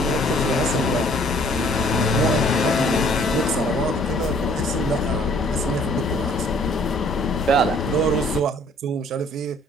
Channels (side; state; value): both; normal; correlation 0.58